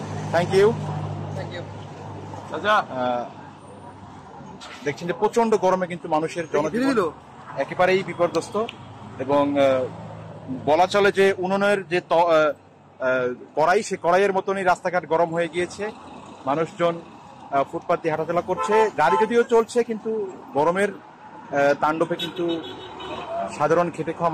থ্যাংক ইউ দেখছেন যে প্রচন্ড গরমে কিন্তু মানুষের জনজীবন একেবারেই বিপর্যস্ত। এবং বলা চলে যে উনুনের যে কড়াই, সে কড়াইয়ের মতনই রাস্তাঘাট গরম হয়ে গিয়েছে। মানুষজন ফুটপাত দিয়ে হাঁটাচলা করছে, গাড়ি যদিও চলছে, কিন্তু গরমের তাণ্ডবে কিন্তু সাধারণ খেটে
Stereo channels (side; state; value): both; identical; correlation 1.00